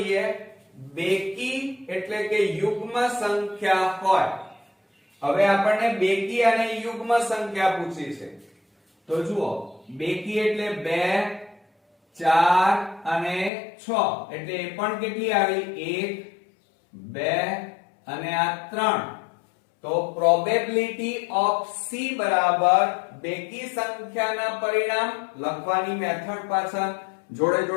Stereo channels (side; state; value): right; drops out; at 13.5 s